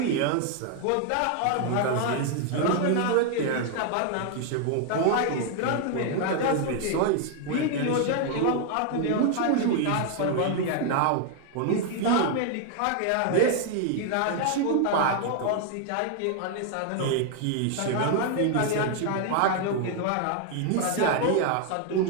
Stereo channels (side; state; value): both; different; correlation 0.00